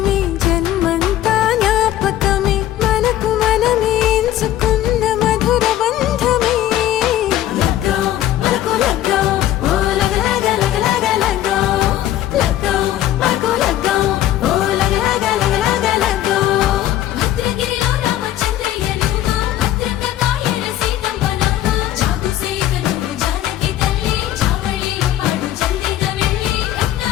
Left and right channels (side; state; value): right; quieter; 12.9 dB